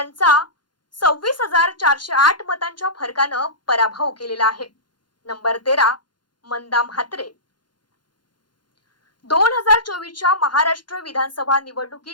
26,408 मतांच्या फरकानं पराभव केलेला आहे. नंबर 13 मंदा म्हात्रे. 2024च्या महाराष्ट्र विधानसभा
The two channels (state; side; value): late; right; 0.71 ms